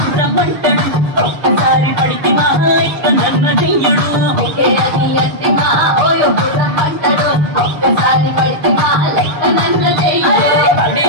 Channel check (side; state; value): left; late; 6.7 ms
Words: రమ్మంటాడు ఒక్కసారి పడితే మహా ఇక నన్ను చెయ్యడు ఓకే అని అంటి మహాబోయో రమ్మంటాడు ఒక్కసారి పడితే మహా లెక్క నన్ను చెయ్యడు